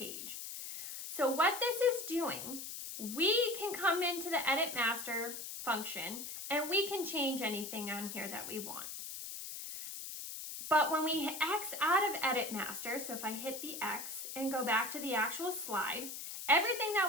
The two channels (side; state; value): left; noise; hiss, 8 dB below the sound